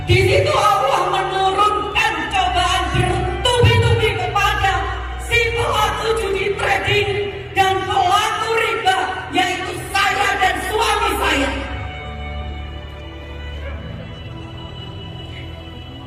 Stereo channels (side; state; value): both; identical; correlation 1.00